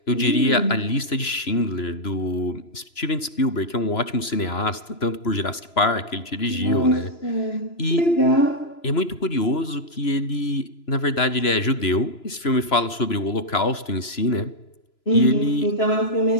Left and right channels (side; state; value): right; late; 3.0 ms